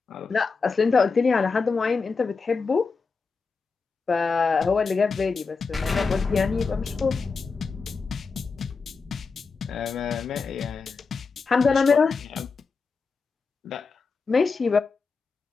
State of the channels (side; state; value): right; quieter; 4.7 dB